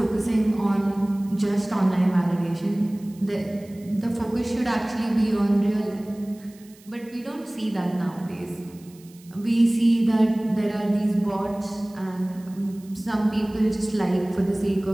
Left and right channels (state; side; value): noise; right; hiss, 26 dB below the sound